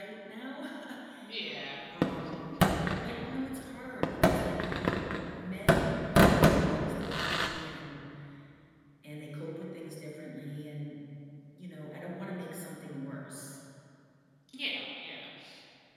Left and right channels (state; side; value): identical; both; correlation 1.00